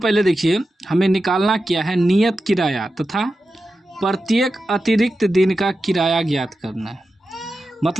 देखिए, हमें निकालना क्या है, नियत किराया तथा प्रत्येक अतिरिक्त दिन का किराया ज्ञात करना है।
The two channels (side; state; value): both; normal; correlation 0.91